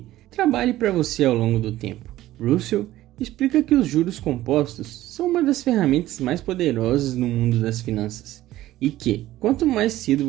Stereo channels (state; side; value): quieter; left; 15.1 dB